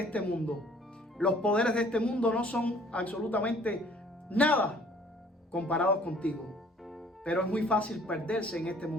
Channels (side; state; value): both; normal; correlation 0.56